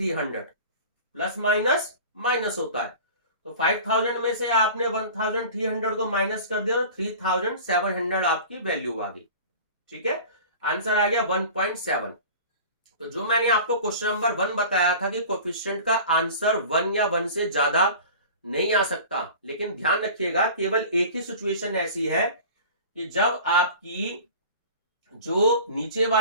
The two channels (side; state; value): both; inverted; correlation -0.40